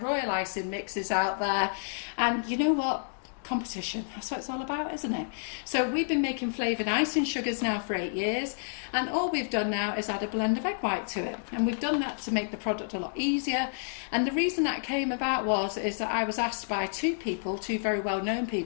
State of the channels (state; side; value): silent; right; digital silence